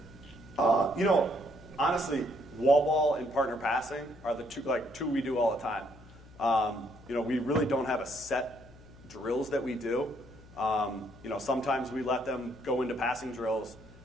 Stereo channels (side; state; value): left; noise; hum, 22 dB below the sound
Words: Honestly, wall ball and partner passing are the two we do all the time. We really don't have a set drills that we do. Sometimes we let them go into passing drills,